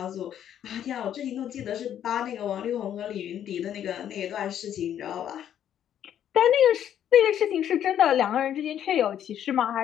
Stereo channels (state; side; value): quieter; right; 10.1 dB